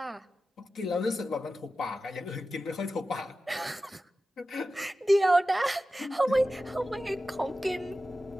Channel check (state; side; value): normal; both; correlation 0.94